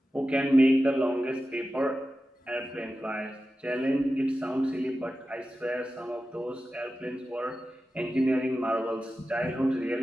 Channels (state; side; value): normal; both; correlation 0.93